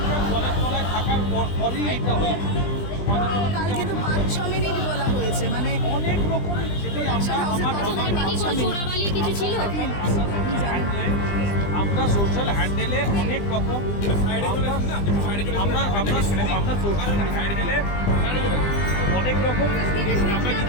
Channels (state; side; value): late; right; 20 ms